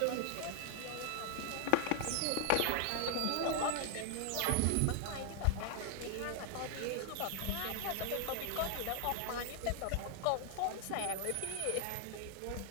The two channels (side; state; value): both; different; correlation 0.00